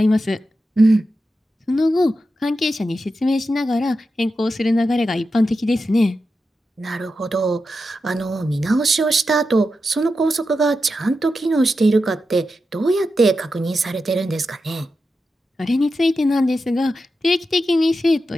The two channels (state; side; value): normal; both; correlation 0.89